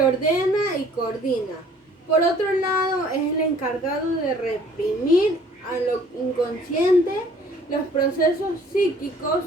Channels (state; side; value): normal; both; correlation 0.56